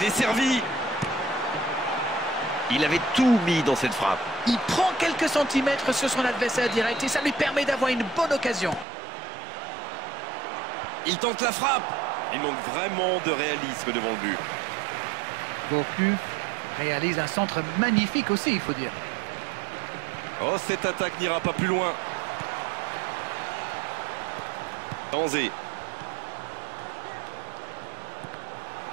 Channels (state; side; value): drops out; left; at 8.8 s